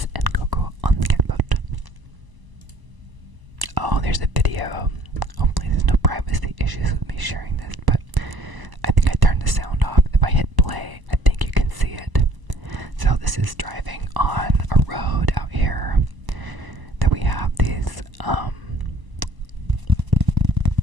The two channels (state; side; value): late; left; 1.0 ms